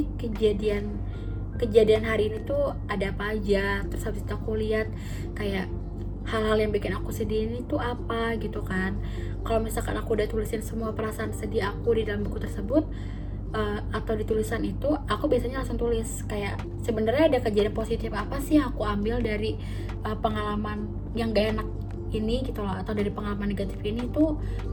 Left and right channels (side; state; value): both; identical; correlation 1.00